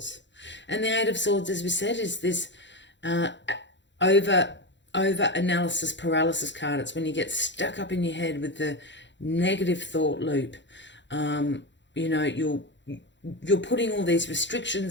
And the Eight of Swords, as we said, is this over analysis paralysis card. It's when you get stuck up in your head with the negative thought loop. You know, you're putting all these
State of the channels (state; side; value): late; right; 0.53 ms